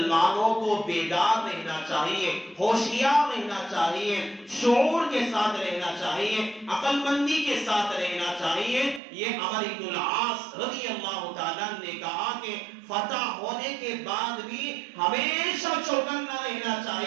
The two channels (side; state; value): left; drops out; at 9.0 s